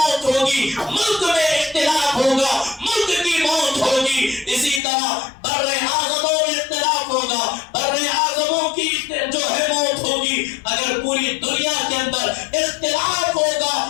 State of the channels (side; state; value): right; drops out; at 4.8 s